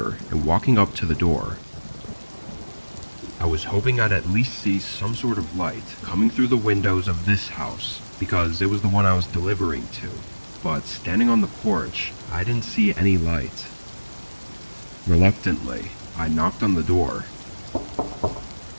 and walking up to the door. I was hoping I'd at least see some sort of light coming through the windows of this house, because it was the one I was delivering to. But standing on the porch, I didn't see any light. Reluctantly, I knocked on the door.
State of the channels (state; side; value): inverted; both; correlation -1.00